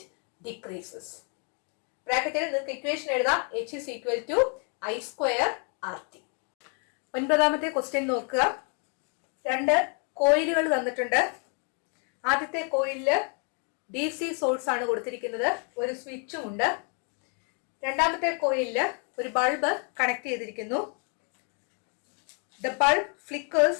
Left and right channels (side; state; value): right; quieter; 39.8 dB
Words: decreases. ബ്രാക്കറ്റിൽ നിങ്ങൾക്ക് equation എഴുതാം. H is equal to I square RT. ഒൻപതാമത്തെ question നോക്കുക. 2 കോയിലുകൾ തന്നിട്ടുണ്ട്. ആദ്യത്തെ കോയിലില് DC source ആണ് കൊടുത്തിരിക്കുന്നത്. ഒരു സ്വിച്ചും ഉണ്ട്. രണ്ടാമത്തെ കോയിലില് ഒരു ബൾബ് കണക്ട് ചെയ്തിരിക്കുന്നു. The bulb flickers